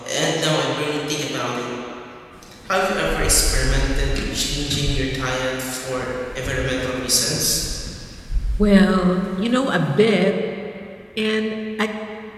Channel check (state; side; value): identical; both; correlation 1.00